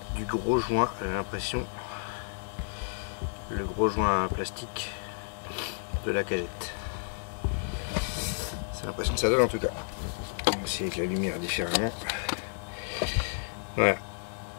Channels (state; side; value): silent; right; digital silence